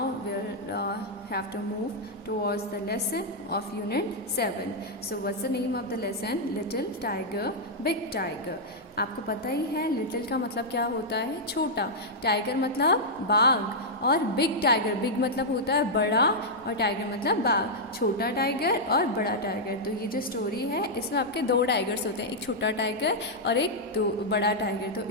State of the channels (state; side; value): normal; both; correlation -0.06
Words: we'll have to move towards the lesson of unit 7. So what's the name of the lesson? Little Tiger, Big Tiger. आपको पता ही है little का मतलब क्या होता है, छोटा, टाइगर मतलब बाघ, और बिग टाइगर, बिग मतलब होता है बड़ा और टाइगर मतलब बाघ, छोटा टाइगर और बड़ा टाइगर। तो ये जो स्टोरी है इसमें आपके दो टाइगर्स होते हैं, एक छोटा टाइगर और एक बड़ा टाइगर। तो